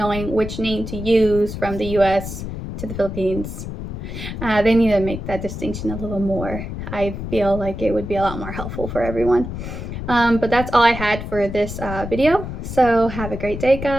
which name to use from the US to the Philippines. They need to make that distinction a little more. I feel like it would be a lot more helpful for everyone. But that's all I had for this video. So have a great day,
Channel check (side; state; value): left; noise; rumble, 7 dB below the sound